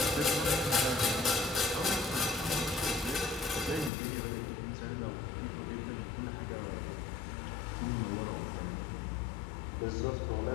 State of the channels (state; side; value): drops out; right; at 3.9 s